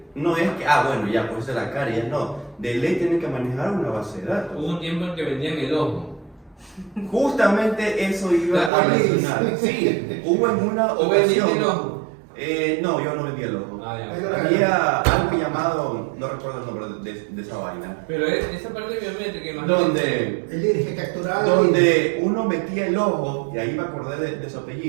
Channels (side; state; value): left; drops out; at 8.7 s